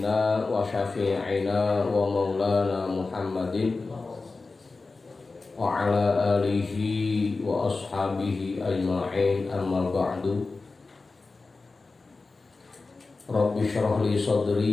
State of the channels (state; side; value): quieter; right; 3.8 dB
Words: wa syafi'ina wa maulana Muhammadin wa ala alihi wa ashabihi ajma'in, amma ba'du. Rabbi syrah li